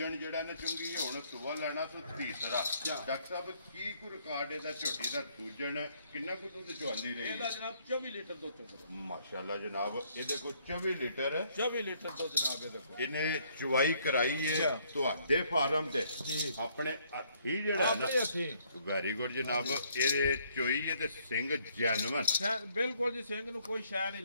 ਜਿਹੜਾ ਨਾ ਚੁੰਗੀ ਹੁਣ ਸੂਆ ਲੈਣਾ ਤੇ ਤੀਸਰਾ। ਡਾਕਟਰ ਸਾਹਿਬ ਕੀ ਕੋ ਰਿਕਾਰਡ ਇਹਦਾ ਝੋਟੀ ਦਾ ਦੂਜਣ ਕਿੰਨਾ ਕੁ ਦੁੱਧ ਚੁਆਂਦੀ ਰਹੀ? ਇਹਦਾ ਜਨਾਬ 24 ਲੀਟਰ ਦੁੱਧ ਚੁੰਗਦਾ। ਮਾਸ਼ਾਅੱਲਾ ਜਨਾਬ। ਇਹਦੇ ਕੋਲ 24 ਲੀਟਰ 24 ਲੀਟਰ ਦੁੱਧ ਜਨਾਬ ਇਹਦੇ ਕੋਲ। ਇਹਨੇ ਚੁਆਈ ਕਰਾਈ ਹੈ ਤੁਹਾਡੇ ਫਾਰਮ ਤੇ ਆਪਣੇ ਹੱਥੀ ਜਿਹੜਾ ਨਾ? ਵੈਰੀ ਗੁੱਡ ਜਨਾਬ। ਇਹਦੇ ਚੋਈ ਹੈ ਤੇ ਸਿੰਘ ਜੈਨੂਨ ਬਿਲਕੁਲ ਜੀ। ਸਿੰਘ ਨੂੰ ਕੋਈ ਸ਼ੈ ਨਹੀਂ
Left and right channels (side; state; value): both; inverted; correlation -0.67